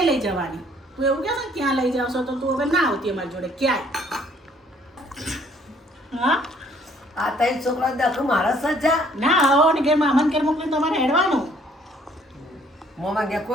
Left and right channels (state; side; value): normal; both; correlation 0.61